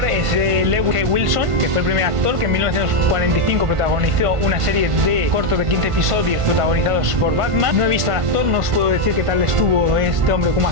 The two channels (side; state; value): left; late; 1.5 ms